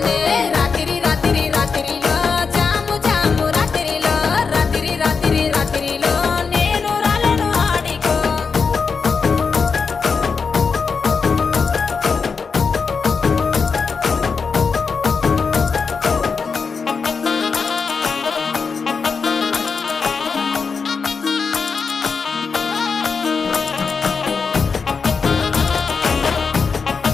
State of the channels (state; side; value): quieter; right; 5.3 dB